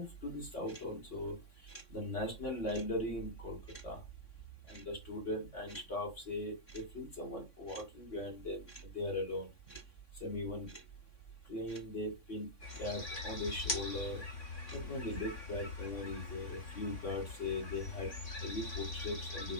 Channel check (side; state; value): right; late; 3.6 ms